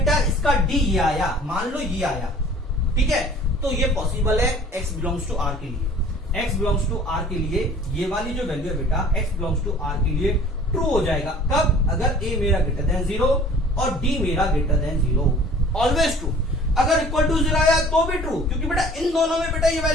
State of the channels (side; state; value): both; normal; correlation 0.49